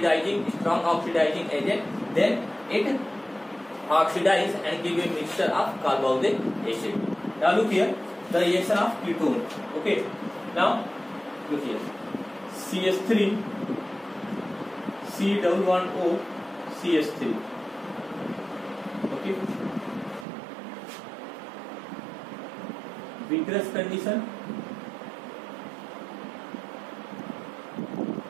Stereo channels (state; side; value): drops out; left; at 20.2 s